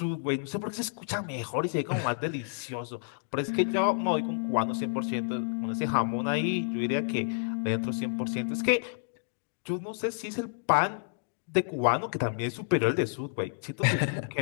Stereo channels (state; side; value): silent; right; digital silence